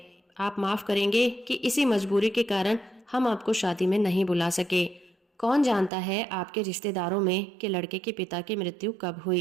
आप माफ करेंगे कि इसी मजबूरी के कारण हम आपको शादी में नहीं बुला सके। कौन जानता है आपके रिश्तेदारों में कि लड़के के पिता की मृत्यु कब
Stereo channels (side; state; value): left; drops out; at 5.9 s